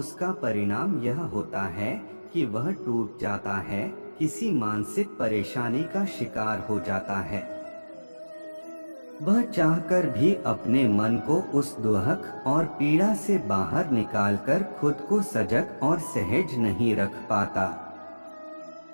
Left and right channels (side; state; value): both; inverted; correlation -1.00